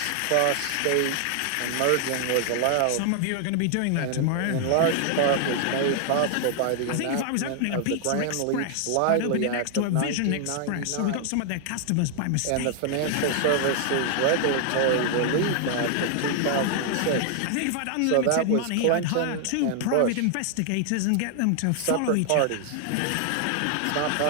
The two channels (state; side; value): different; both; correlation 0.00